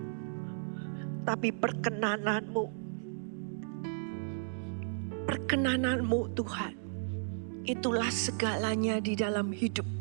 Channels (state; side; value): silent; left; digital silence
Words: tapi perkenanan-Mu. Perkenanan-Mu, Tuhan, itulah segalanya di dalam hidup